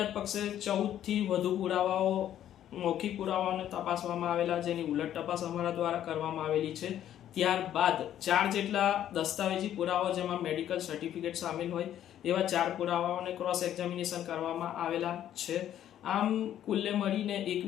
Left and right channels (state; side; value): quieter; right; 11.2 dB